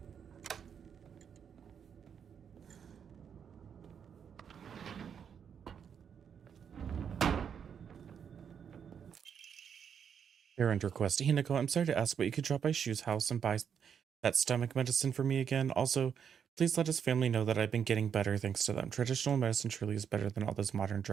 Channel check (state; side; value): quieter; left; 7.6 dB